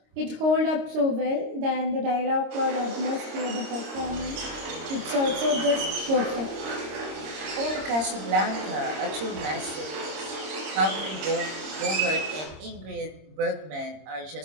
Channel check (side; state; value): left; late; 26 ms